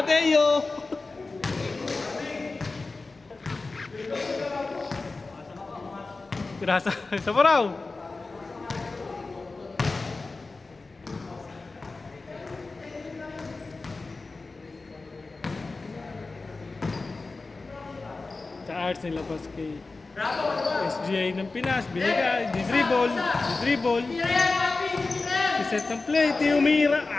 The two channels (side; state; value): right; quieter; 3.7 dB